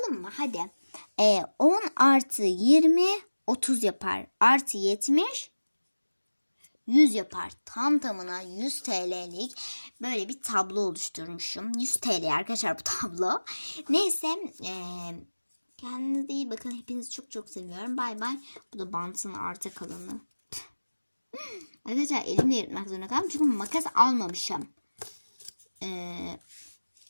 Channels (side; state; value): both; inverted; correlation -1.00